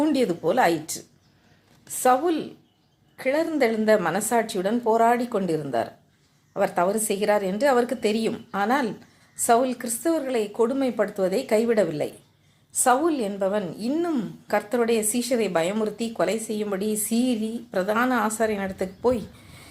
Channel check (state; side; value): identical; both; correlation 1.00